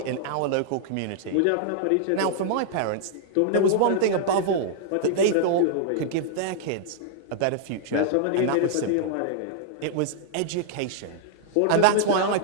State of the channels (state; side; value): different; both; correlation -0.01